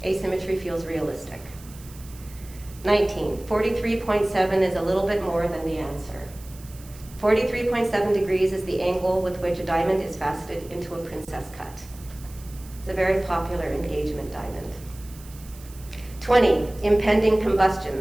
asymmetry feels realistic. 19, 43.7 is a little bit more than the answer. 43.7 degrees is the angle with which a diamond is faceted into a princess cut. It's a very popular engagement diamond. 20, impending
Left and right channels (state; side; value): noise; right; hiss, 21 dB below the sound